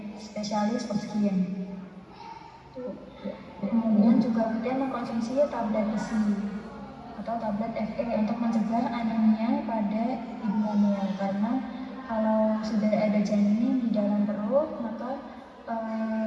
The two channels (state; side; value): identical; both; correlation 1.00